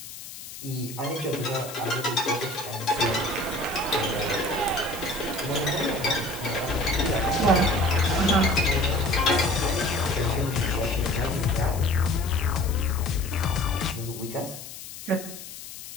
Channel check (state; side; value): noise; left; hiss, 13 dB below the sound